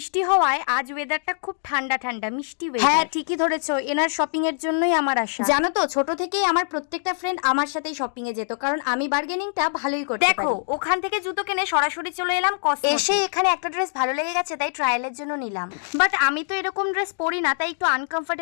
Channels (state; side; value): silent; right; digital silence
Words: হওয়ায় আজ ওয়েদারটা খুব ঠান্ডা ঠান্ডা মিষ্টি ওয়েদার। হ্যাঁ ঠিকই ধরেছো, এনার শপিং এর জন্যই আমার আসা। জানো তো, ছোট থেকেই আমার প্রত্যেকটা ফ্রেন্ড আমার সাথেই শপিং এ যেত, কারণ আমি বার্গেনিংটা ভালোই করতে পারি। দেখো, ওখান থেকে জুতো কিনে সরাসরি চলে এলাম কসমোতে। এসে এখানে একটা ড্রেস ভালো লেগে গেছে, তাই ট্রায়ালের জন্য নিলাম। বাট আমি তো এরকম ড্রেস পরি না, তাই একটু